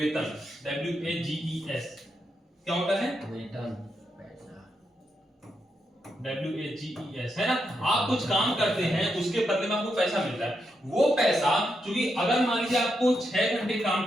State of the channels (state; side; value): normal; both; correlation 0.83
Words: WAGES। क्या होता है? वेतन, WAGES, है ना। आप कुछ काम करते हैं, उसके बदले में आपको पैसा मिलता है। वो पैसा चूंकि अगर मान लीजिए आपको 6 घंटे काम